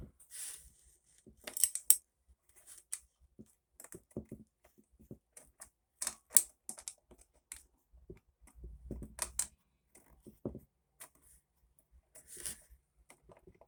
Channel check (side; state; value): both; identical; correlation 1.00